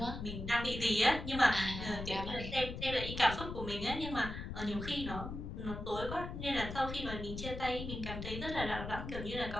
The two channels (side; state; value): left; noise; rumble, 7 dB below the sound